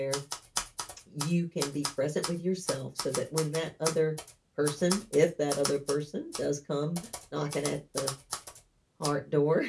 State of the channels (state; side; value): identical; both; correlation 1.00